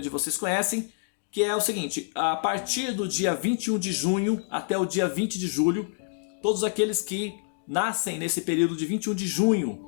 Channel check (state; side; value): silent; right; digital silence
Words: vocês conhecem, que é o seguinte: a partir do dia 21 de junho até o dia 20 de julho, todos aqueles que nascem nesse período de 21 de junho